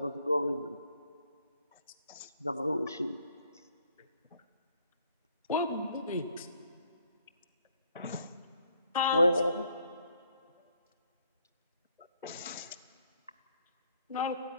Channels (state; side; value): inverted; both; correlation -0.67